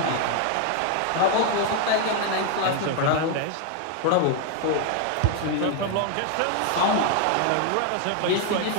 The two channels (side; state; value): both; different; correlation 0.01